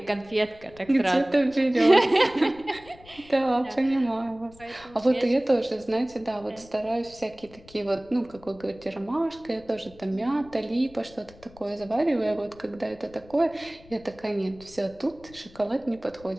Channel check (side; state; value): left; noise; rumble, 23 dB below the sound